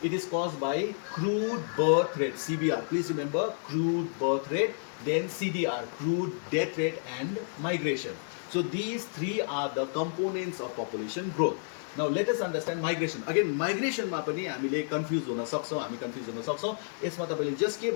it is cause by crude birth rate, CBR, please remember, crude birth rate, then CDR, crude death rate and migration. So these three are the components of population growth. Now let us understand migration. Again, migration मा पनि हामीले confuse हुन सक्छौँ, हामी confuse हुन सक्छौँ। यसमा तपाईँले जस्ट के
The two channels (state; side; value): silent; right; digital silence